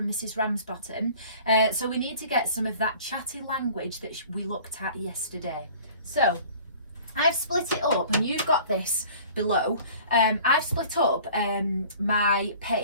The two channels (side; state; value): both; inverted; correlation -0.47